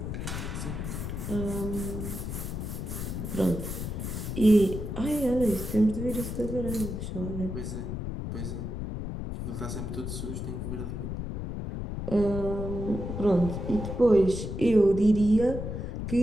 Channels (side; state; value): left; noise; rumble, 5 dB below the sound